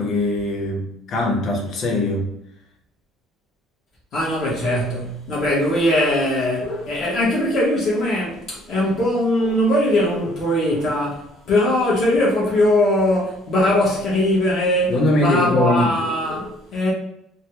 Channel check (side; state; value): both; normal; correlation 0.59